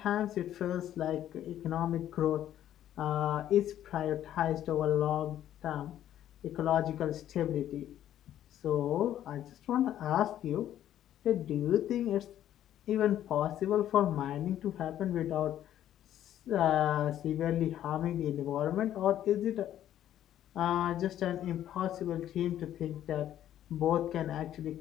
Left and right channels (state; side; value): quieter; right; 11.6 dB